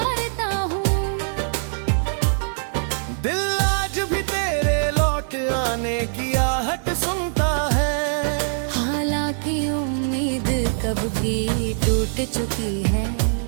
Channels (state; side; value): silent; left; digital silence